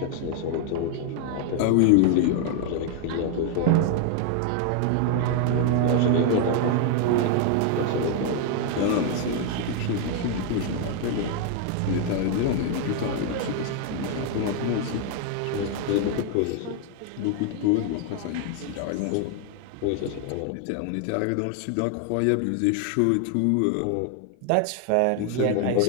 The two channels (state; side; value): different; both; correlation 0.00